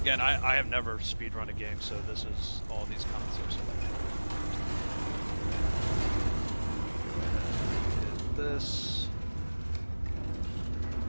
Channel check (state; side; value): inverted; both; correlation -1.00